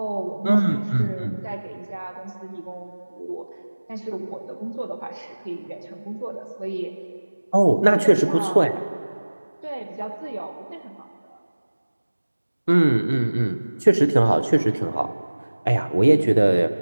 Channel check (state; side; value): inverted; both; correlation -1.00